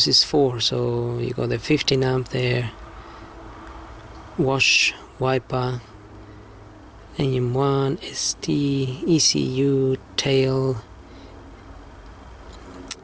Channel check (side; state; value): both; identical; correlation 1.00